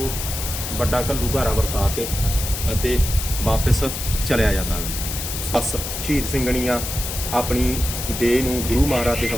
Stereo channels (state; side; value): noise; left; hiss, 5 dB below the sound